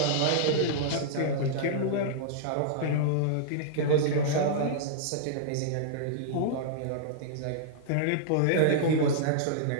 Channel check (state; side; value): different; both; correlation -0.02